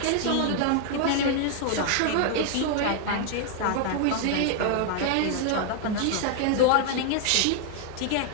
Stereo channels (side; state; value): both; different; correlation 0.00